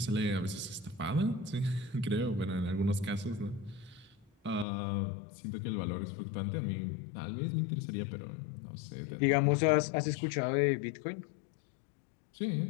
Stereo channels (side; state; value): right; drops out; at 4.7 s